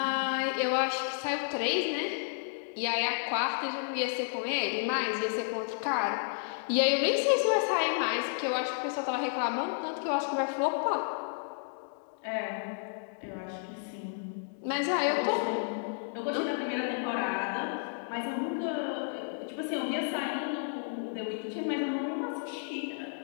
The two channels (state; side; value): silent; right; digital silence